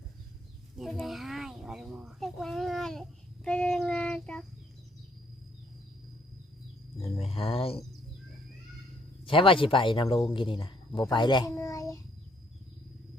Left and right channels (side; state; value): both; normal; correlation 0.67